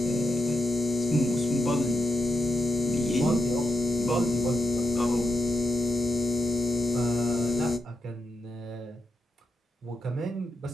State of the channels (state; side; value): normal; both; correlation 0.84